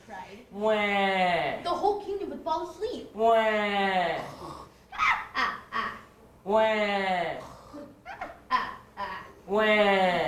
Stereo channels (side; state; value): both; identical; correlation 1.00